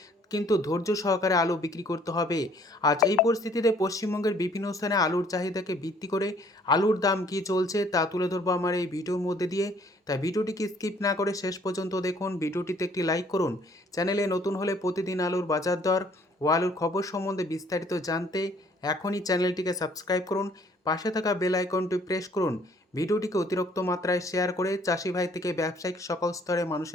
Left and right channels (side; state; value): both; normal; correlation 0.60